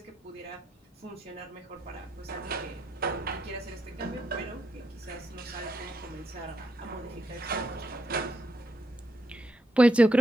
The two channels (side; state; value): both; normal; correlation 0.79